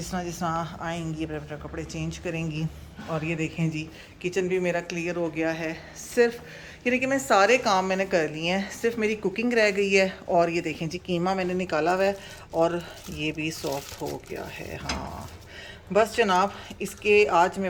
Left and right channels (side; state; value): both; identical; correlation 1.00